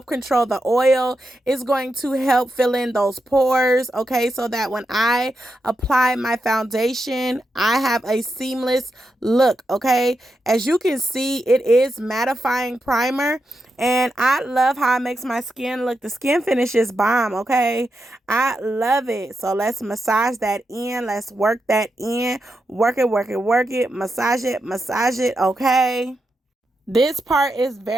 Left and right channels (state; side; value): normal; both; correlation 0.86